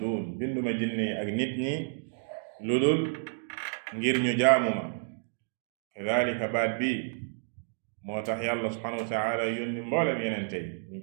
binduma jinne yi ak nit ñi lu dul ngir ñu jaamu ma kadalika baat bi moo tax yàlla subhanahu wa taala yónni mboolem yenente yi ñu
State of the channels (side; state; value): left; silent; digital silence